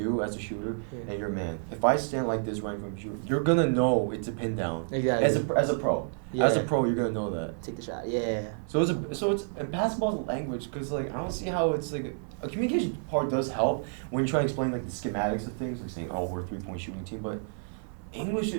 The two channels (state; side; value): silent; left; 58 dB below the other